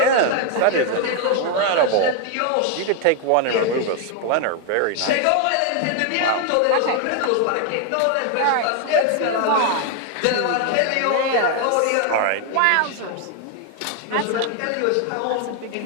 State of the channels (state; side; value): different; both; correlation 0.01